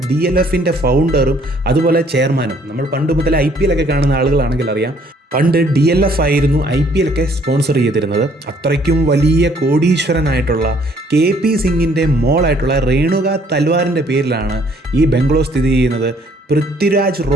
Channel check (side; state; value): both; normal; correlation 0.62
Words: DLFിൻ്റെ ഫൗണ്ടറും അതുപോലെ ചെയർമാനും. നമ്മൾ പണ്ട് മുതൽ IPL ഒക്കെ കാണുന്ന ആളുകളാണെങ്കിൽ അറിയാം. പണ്ട് DLF ആയിരുന്നു IPL ഒക്കെ സ്പോൺസർ ചെയ്തിരുന്നത്. അത്രയ്ക്കും വലിയ കോടീശ്വരനായിട്ടുള്ള KP സിംഗിൻ്റെ മോളായിട്ടുള്ള രേണുക തൽവാറിൻ്റെ പേരിലാണ് ഈ ബംഗ്ലോ സ്ഥിതി ചെയ്യുന്നത്. പൃഥ്വിരാജ്